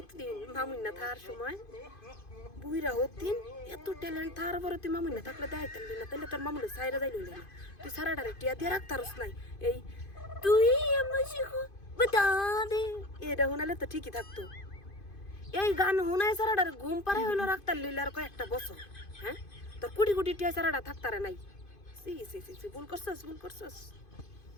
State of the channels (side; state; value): right; late; 2.5 ms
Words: দিন মামুন না থার সময় বুইরা হতিন এত ট্যালেন্ট থার পরে তুই মামুন না থাকলে দেখাই তাহলি না, তাহলে তোর মামুনে সাইরা যাই লইলে না, তুই সারাটারে টিয়া দিয়ে রাখতারস নাই। এই তুই বাতা দে এটা শোনালে তো ঠিকই থাকতো। এই গান শোনায় সারাটারে ঘুম পাড়াই হইলো রাখতার লইলে আর কয়েকটা বছর। হ্যাঁ তোর কোটি কোটি টিয়া সারাটা থাকতারে নাই। সি ভুল করছস